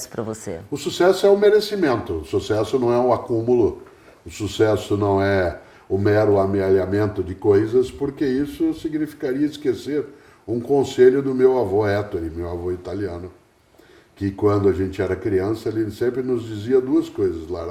para você? O sucesso é o merecimento, o sucesso não é o acúmulo, o sucesso não é o mero amealhamento de coisas, porque isso significaria esquecer um conselho do meu avô Ettore, meu avô italiano, que quando a gente era criança, ele sempre nos dizia duas coisas,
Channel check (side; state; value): both; identical; correlation 1.00